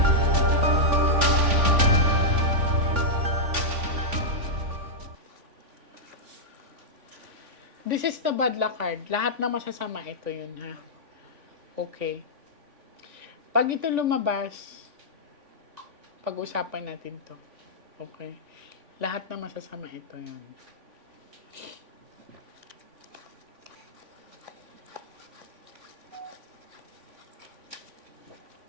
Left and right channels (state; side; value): late; left; 3.5 ms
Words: This is the bad luck card. Lahat na masasama ito yun, ha? Okay. Pag ito lumabas, pag-usapan natin to. Okay. Lahat na masasama ito yun.